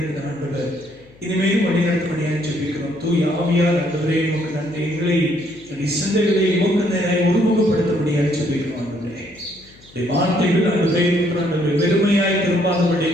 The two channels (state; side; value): noise; left; hum, 26 dB below the sound